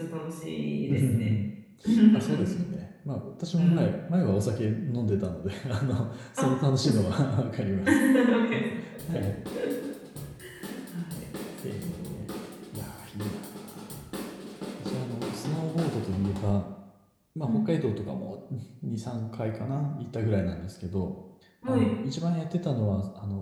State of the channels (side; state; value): both; identical; correlation 1.00